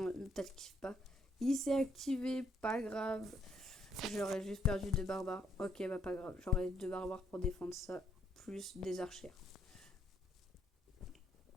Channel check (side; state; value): both; normal; correlation 0.72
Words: peut-être qu'il kiffe pas. Il s'est activé, pas grave. J'aurais juste perdu 2 barbares. Ok, bah pas grave. J'aurais 2 barbares pour défendre ça. Plus des archères.